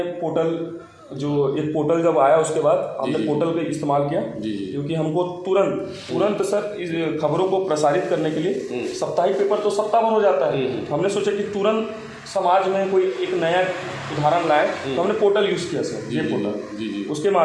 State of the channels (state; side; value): identical; both; correlation 1.00